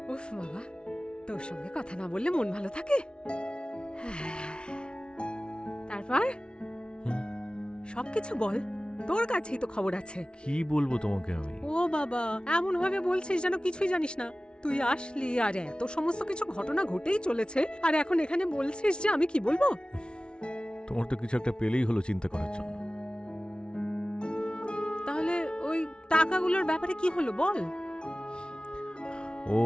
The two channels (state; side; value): late; right; 0.056 ms